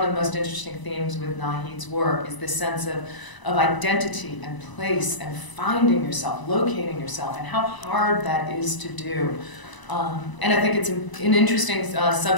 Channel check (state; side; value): late; right; 1.0 ms